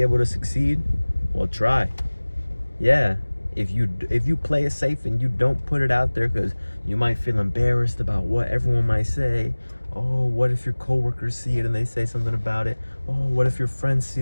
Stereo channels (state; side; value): inverted; both; correlation -1.00